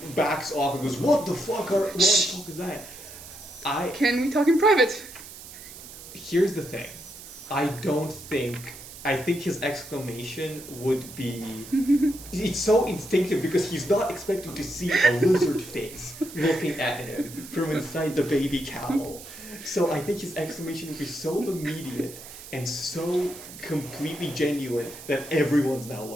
backs off and goes, "What the fuck is that?" Can we talk in private? Here's the thing. I think his exclamation would be. It's so instinctive because he's not expecting to see a lizard face looking at him from inside the baby cowl. So I think his exclamation would be so immediate and so completely genuine that everyone's now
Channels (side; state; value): right; noise; hiss, 15 dB below the sound